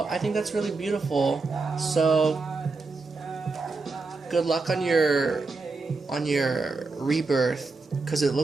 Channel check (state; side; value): quieter; left; 3.9 dB